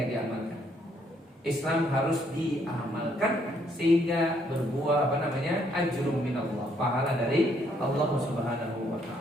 diamalkan. Islam harus diamalkan sehingga berbuah ajrum minallah, pahala dari Allah Subhanahu wa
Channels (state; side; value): normal; both; correlation 0.70